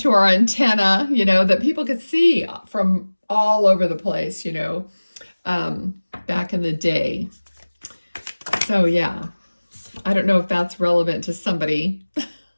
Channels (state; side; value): inverted; both; correlation -1.00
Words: our antenna, you know, that people could see from all over the place, you know. back in the day. So yeah, I don't know if that's relevant to somebody.